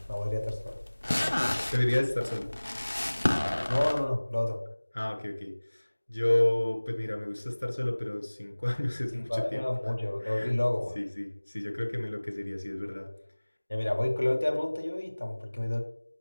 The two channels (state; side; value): inverted; both; correlation -1.00